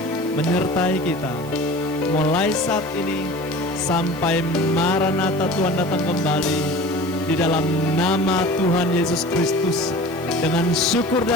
Menyertai kita mulai saat ini sampai Maranatha Tuhan datang kembali. Di dalam nama Tuhan Yesus Kristus, dengan syukur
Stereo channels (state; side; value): noise; right; hiss, 20 dB below the sound